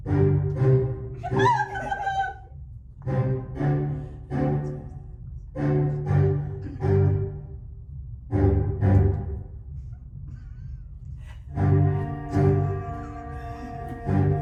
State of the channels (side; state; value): both; identical; correlation 1.00